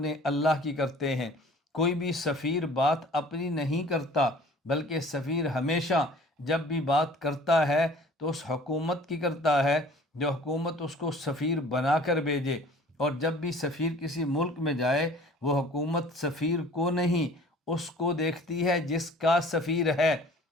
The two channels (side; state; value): both; normal; correlation 0.49